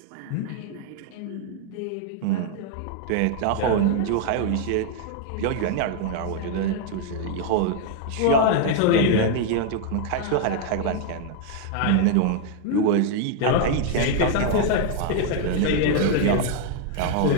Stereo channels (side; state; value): both; different; correlation 0.00